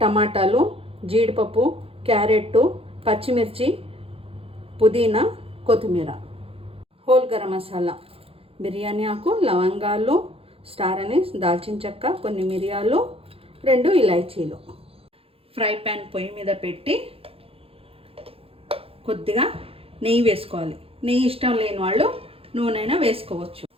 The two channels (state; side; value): late; left; 0.27 ms